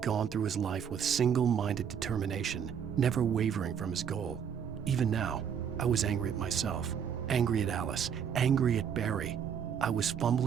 gone through his life with single-minded determination, never wavering from his goal. Even now, I was angry at myself, angry at Alice, angry at Barry. I was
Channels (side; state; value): left; quieter; 7.9 dB